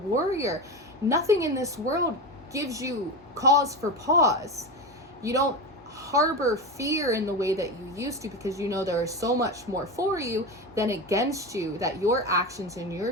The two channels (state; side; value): normal; both; correlation 0.21